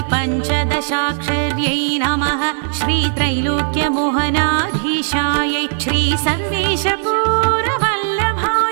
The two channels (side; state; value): left; silent; 68 dB below the other